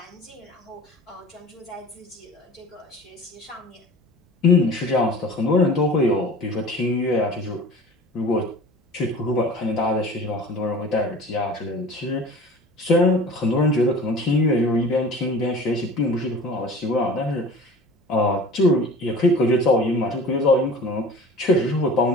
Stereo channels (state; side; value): normal; both; correlation 0.41